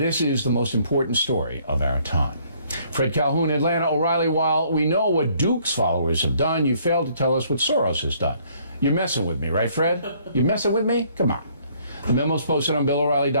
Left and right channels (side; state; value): both; inverted; correlation -0.63